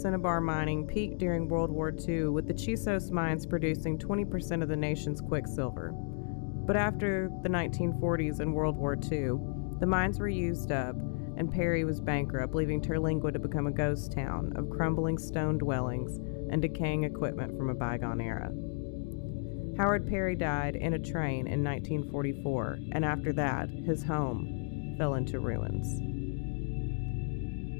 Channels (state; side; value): silent; right; digital silence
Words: mining peaked during World War II, with the Chisos mines producing 20% of the nation's quicksilver. But after the 1940s and World War II, the mines were used up, and Perry was bankrupt, leaving Terlingua to become a ghost town of crumbling stone dwellings and decaying equipment from a bygone era. Howard Perry died in a train in 1944, and after that, his home fell into ruins.